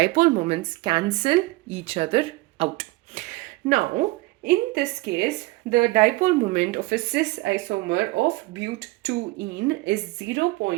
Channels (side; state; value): left; quieter; 21.4 dB